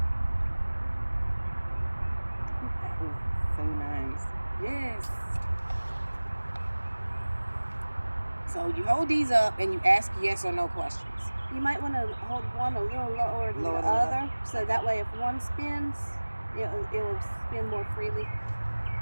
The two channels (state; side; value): inverted; both; correlation -1.00